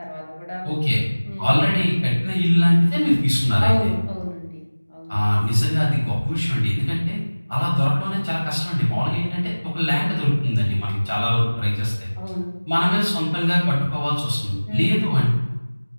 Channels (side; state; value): both; inverted; correlation -1.00